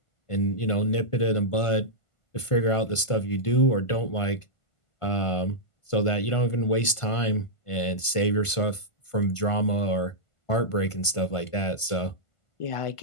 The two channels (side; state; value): right; late; 1.5 ms